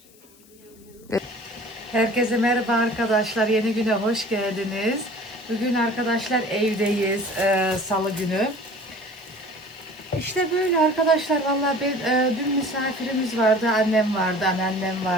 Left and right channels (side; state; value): left; noise; hiss, 27 dB below the sound